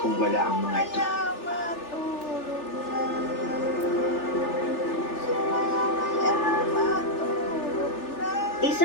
kung wala ang mga ito.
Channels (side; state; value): right; late; 3.4 ms